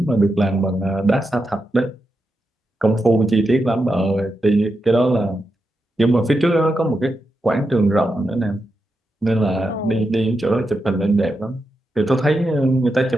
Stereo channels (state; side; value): normal; both; correlation 0.87